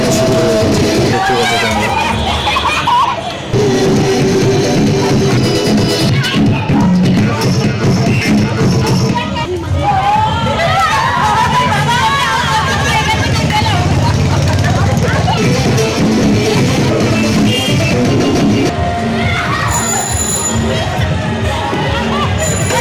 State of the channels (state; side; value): identical; both; correlation 1.00